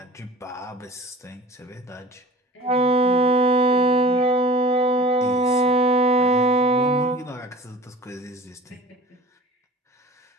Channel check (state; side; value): normal; both; correlation 0.40